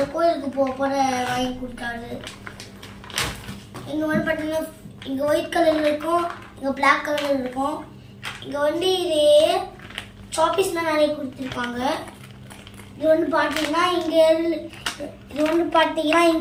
கோயிலுக்கு போகிற வாங்கி கொடுத்தாரு. இங்கே வந்து பார்த்தீங்கன்னா இங்கே ஒயிட் கலர் இருக்கும், இங்கே பிளாக் கலர் இருக்கும். இங்கே வந்து இதே சாப்பீஸ்லாம் நிறைய கொடுத்துருப்பாங்க. இது வந்து பார்த்தீங்கன்னா இங்கே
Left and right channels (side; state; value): both; identical; correlation 1.00